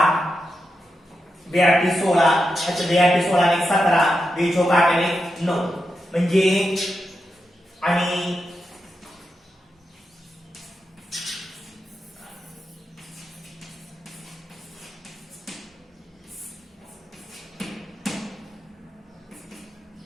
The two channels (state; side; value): normal; both; correlation 0.87